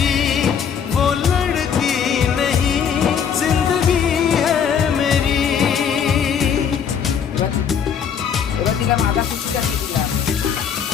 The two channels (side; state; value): right; quieter; 7.5 dB